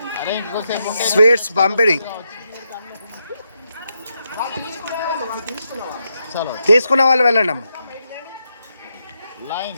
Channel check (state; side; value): inverted; both; correlation -0.83